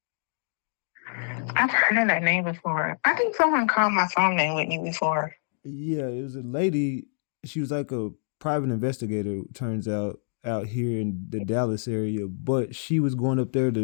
I've heard of that name before. I think someone called my phone name Whitney before. Yeah, it was a lady. She was like a private investigator, turns out here in the Dallas area, but she was going up there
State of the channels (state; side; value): silent; right; digital silence